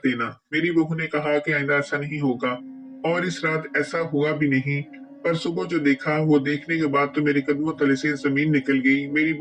देना। मेरी बहू ने कहा कि आइंदा ऐसा नहीं होगा, और इस रात ऐसा हुआ भी नहीं। पर सुबह जो देखा, वो देखने के बाद तो मेरे कदमों तले से जमीन निकल गई। मेरी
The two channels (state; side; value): identical; both; correlation 1.00